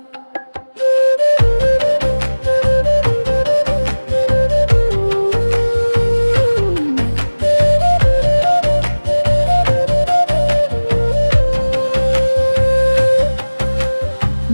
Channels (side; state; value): both; inverted; correlation -1.00